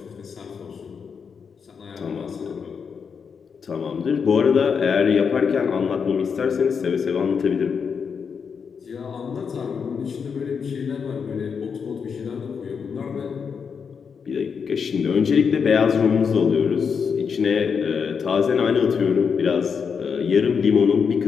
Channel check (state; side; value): quieter; right; 6.2 dB